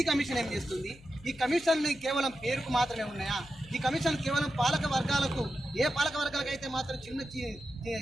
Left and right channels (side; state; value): left; noise; hum, 22 dB below the sound